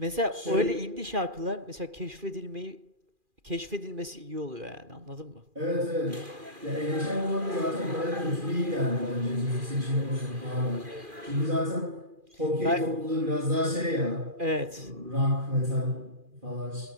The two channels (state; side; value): late; left; 2.4 ms